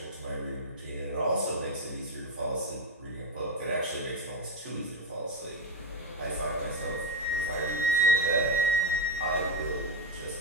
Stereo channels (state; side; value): normal; both; correlation 0.09